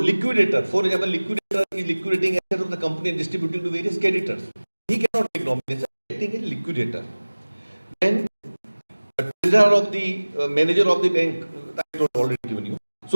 for example, liquidator is liquidating assets of the company and distributing to various creditors. He cannot make nomination, acting as a liquidator. Then treasurer of the manager of the bank, I have already given you.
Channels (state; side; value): inverted; both; correlation -1.00